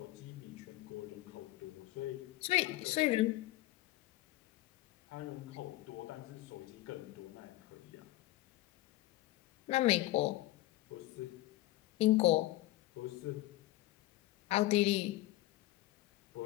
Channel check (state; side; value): quieter; right; 17.0 dB